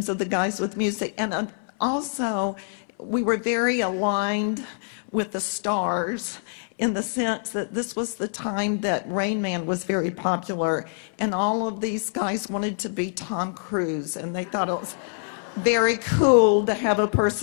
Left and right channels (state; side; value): silent; right; 62 dB below the other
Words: of the guys with music. And also, we were very aligned with the stars in the sense that this was the time that Rain Man was very popular, and all of these guys wanted to be Tom Cruise, and they thought it was very cool to have a